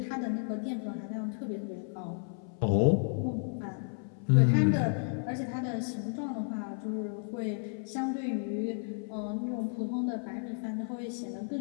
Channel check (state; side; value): silent; right; 56 dB below the other